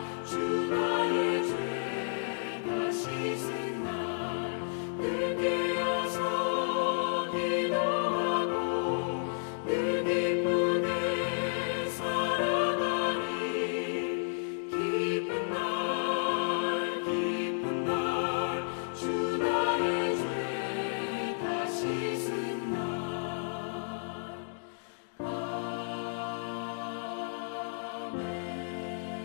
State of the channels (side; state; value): right; silent; digital silence